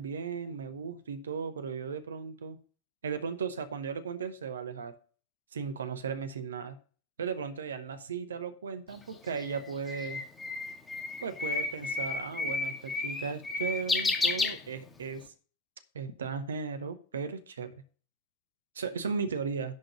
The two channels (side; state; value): both; normal; correlation -0.01